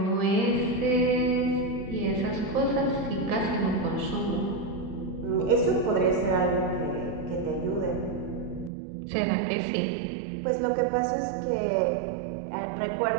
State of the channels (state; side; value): drops out; left; at 8.7 s